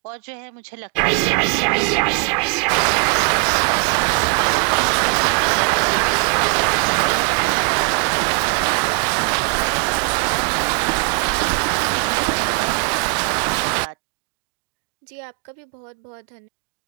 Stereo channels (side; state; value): left; quieter; 33.4 dB